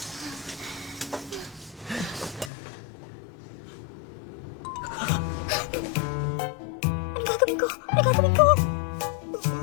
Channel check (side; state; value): right; drops out; at 2.5 s